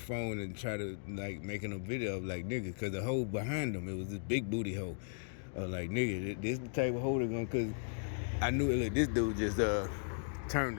and try to like making a video of like nigga, cause the hole behind him, it was this big booty hole. Like nigga, this the type of hole they're gonna, cause I knew it. Look, this dude just turned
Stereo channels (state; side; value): silent; right; digital silence